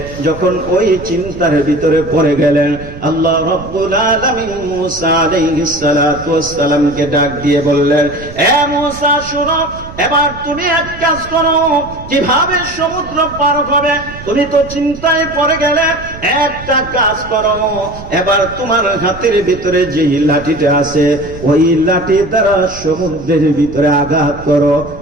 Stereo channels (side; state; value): right; noise; rumble, 14 dB below the sound